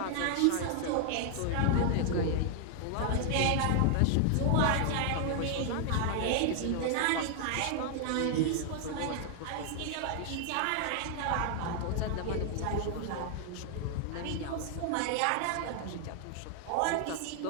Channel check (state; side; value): different; both; correlation 0.00